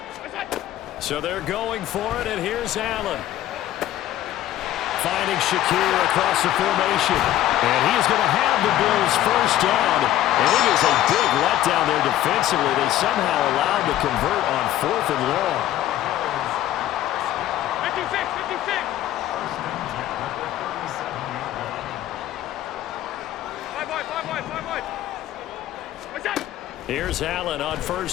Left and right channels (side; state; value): right; quieter; 13.2 dB